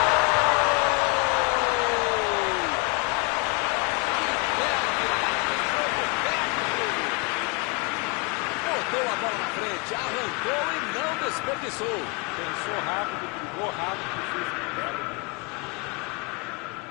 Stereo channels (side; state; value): right; quieter; 31.6 dB